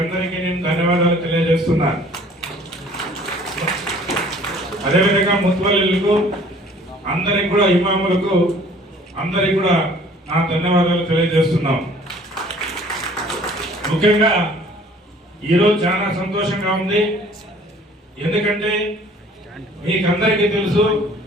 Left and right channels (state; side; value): normal; both; correlation 0.53